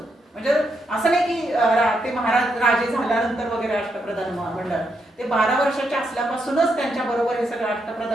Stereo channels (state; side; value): normal; both; correlation 0.80